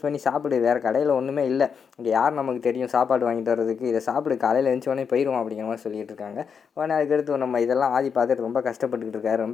பண்ணி சாப்பிடு, வேறு கடையில் ஒன்றுமே இல்லை, இங்கே யார் நமக்கு தெரியும் சாப்பாடு வாங்கிட்டு வர்றதுக்கு, இதை சாப்பிடு, காலையில் எழுந்தோடனே போயிடுவோம் அப்படிங்கிற மாதிரி சொல்லிட்டு இருக்காங்க. உடனே அதுக்கடுத்து நம்ம இதெல்லாம் ஆதி பார்த்துட்டு ரொம்ப கஷ்டப்பட்டுக்கிட்டு இருக்காரு,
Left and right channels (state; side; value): quieter; right; 6.5 dB